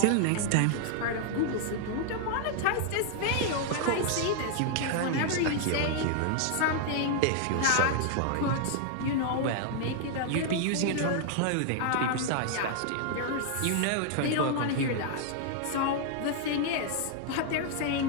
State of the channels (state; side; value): different; both; correlation 0.00